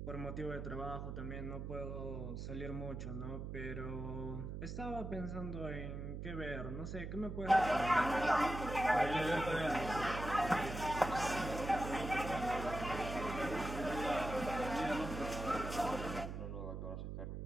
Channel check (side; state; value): right; noise; hum, 6 dB below the sound